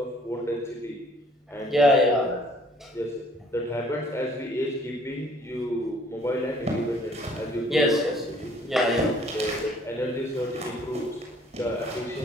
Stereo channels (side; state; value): both; normal; correlation 0.59